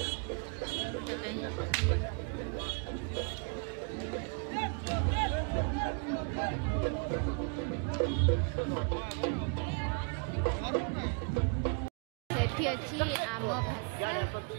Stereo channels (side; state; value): left; quieter; 39.0 dB